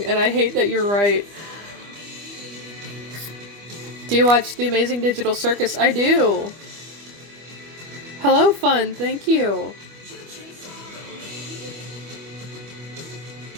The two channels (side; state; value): left; late; 25 ms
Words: and I hate that you're right. Do you watch The Amazing Digital Circus? I do. Hello, Fun. Thank you.